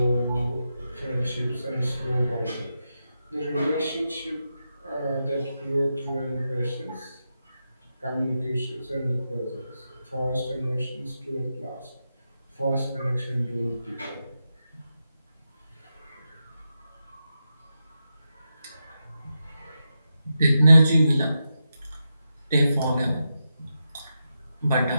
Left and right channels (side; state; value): both; inverted; correlation -0.88